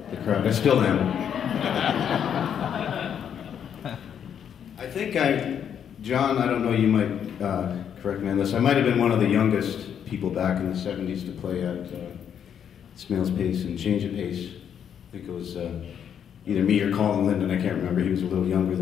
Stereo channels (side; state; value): right; quieter; 8.5 dB